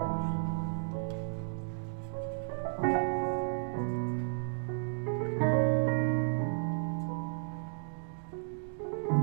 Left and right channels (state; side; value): silent; left; digital silence